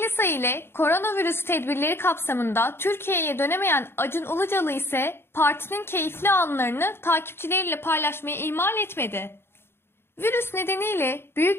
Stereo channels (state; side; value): late; right; 0.11 ms